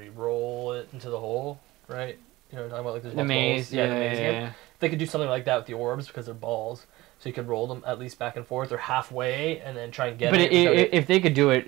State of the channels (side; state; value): left; quieter; 19.0 dB